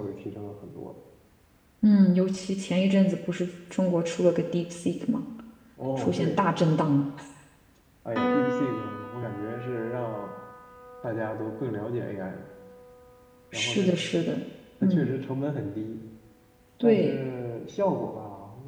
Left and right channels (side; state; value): both; identical; correlation 1.00